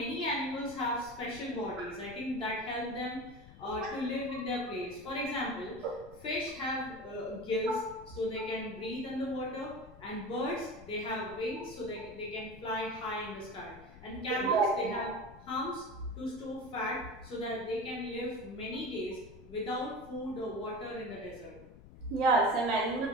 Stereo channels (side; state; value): left; noise; rumble, 18 dB below the sound